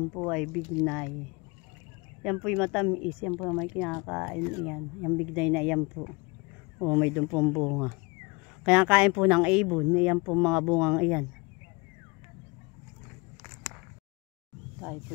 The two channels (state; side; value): quieter; right; 27.2 dB